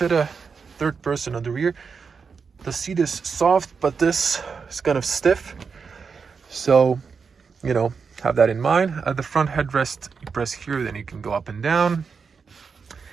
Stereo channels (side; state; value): left; quieter; 5.5 dB